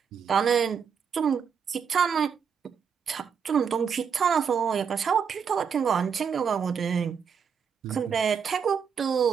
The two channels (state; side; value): quieter; left; 6.8 dB